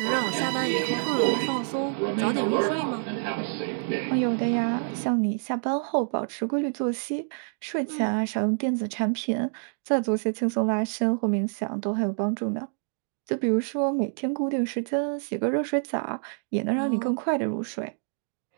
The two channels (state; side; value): silent; left; digital silence